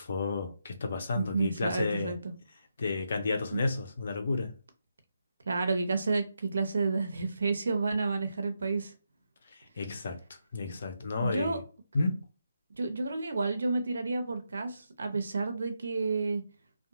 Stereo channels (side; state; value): both; inverted; correlation -0.83